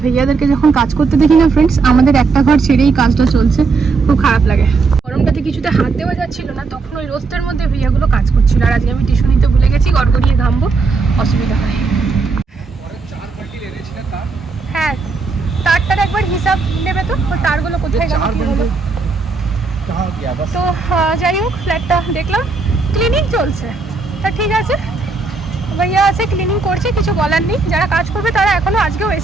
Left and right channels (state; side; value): quieter; left; 4.3 dB